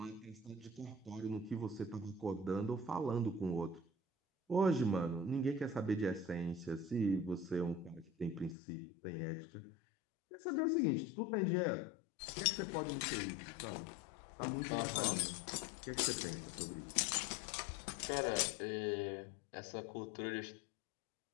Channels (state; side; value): drops out; right; at 8.6 s